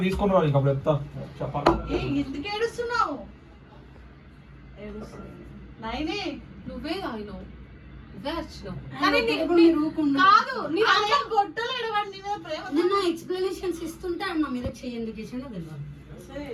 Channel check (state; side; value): identical; both; correlation 1.00